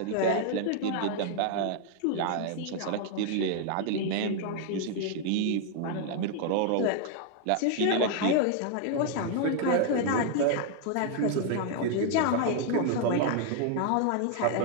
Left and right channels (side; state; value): both; different; correlation 0.00